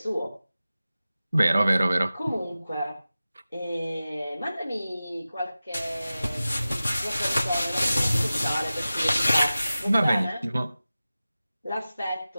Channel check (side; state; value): both; inverted; correlation -0.95